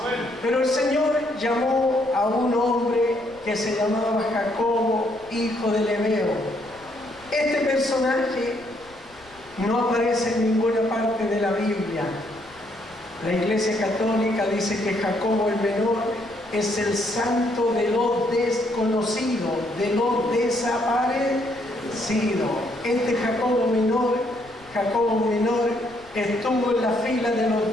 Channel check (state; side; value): noise; left; rumble, 27 dB below the sound